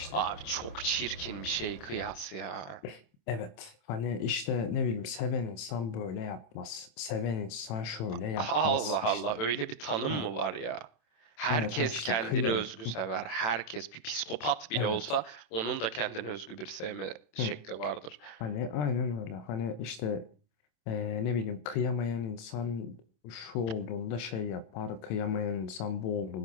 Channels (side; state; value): right; late; 27 ms